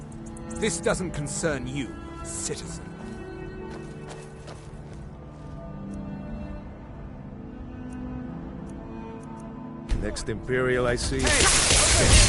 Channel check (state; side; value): identical; both; correlation 1.00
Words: This doesn't concern you, citizen. Next Imperial I see.